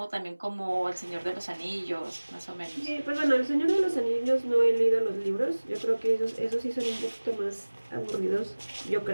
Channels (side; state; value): both; inverted; correlation -1.00